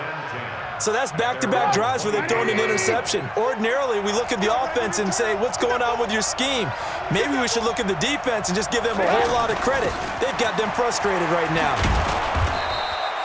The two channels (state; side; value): identical; both; correlation 1.00